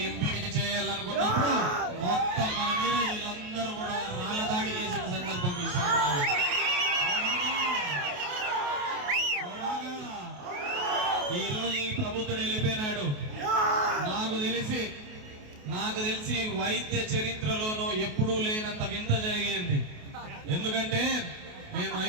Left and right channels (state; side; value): late; left; 28 ms